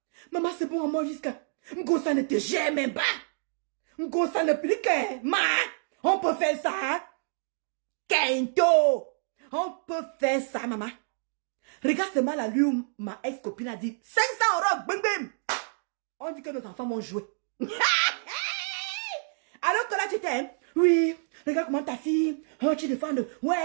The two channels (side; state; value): left; silent; digital silence